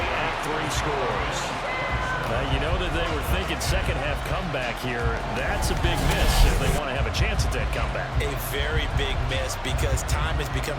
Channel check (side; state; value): both; identical; correlation 1.00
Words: at 3 scores. You know that they were thinking 2nd half comeback here. That's a big miss if they want to have a chance at that comeback. A very big miss because time is